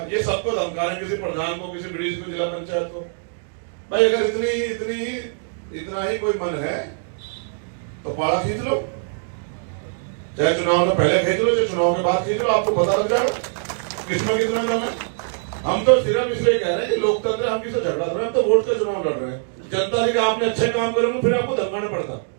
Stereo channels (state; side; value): silent; left; digital silence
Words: ये सबको धमका रहे हैं, किसी प्रधान को, किसी ब्रिज को, जिला पंचायत को। भाई अगर इतना ही कोई मन है तो पाड़ा खींच लो, चाहे चुनाव में पहले खींच लो, चाहे चुनाव के बाद खींच लो, आपको पता लग जाएगा किसमें कितना दम है। हम तो सिर्फ इसलिए कह रहे हैं कि लोकतंत्र, हम किसी झगड़ा कर रहे हैं, हम तो वोट का चुनाव लड़ रहे हैं। जनता ने आपने अच्छे काम करेंगे फिर आपको धमकाना पड़ता।